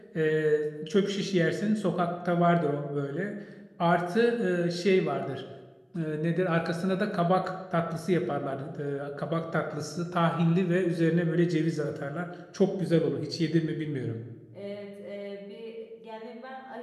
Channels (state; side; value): identical; both; correlation 1.00